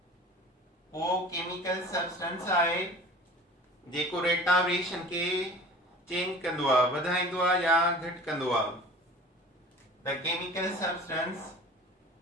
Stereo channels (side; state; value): both; normal; correlation 0.41